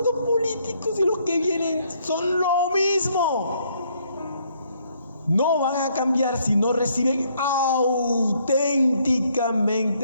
dos políticos y los que vienen son lo mismo. No van a cambiar si no reciben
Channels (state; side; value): inverted; both; correlation -0.69